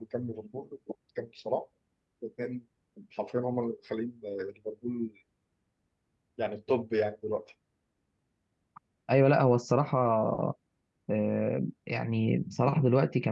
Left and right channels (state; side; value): identical; both; correlation 1.00